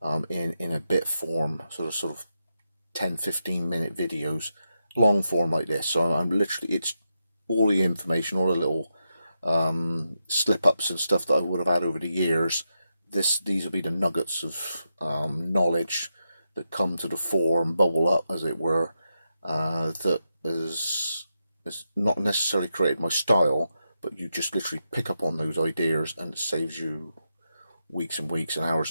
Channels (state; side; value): inverted; both; correlation -0.86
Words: in a bit form, sort of 10-15 minute videos, long form like this. So I'm literally, it's all the information, all the little slip ups and stuff that I would have had over the years. These will be the nuggets of knowledge that come to the fore and bubble up, as it were, that has not necessarily created my style, but you just literally pick up on those ideas, and it saves you weeks and weeks and